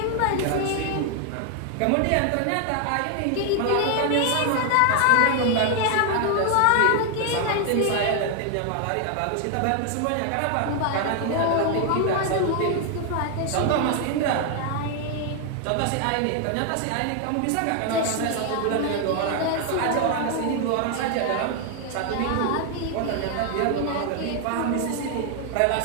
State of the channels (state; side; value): different; both; correlation 0.00